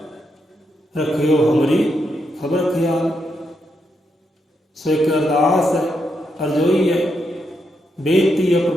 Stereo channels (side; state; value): both; normal; correlation 0.81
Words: रखियो हमारी खबर ख्याल। सो एक अरदास है, अरजोई है, बेनती है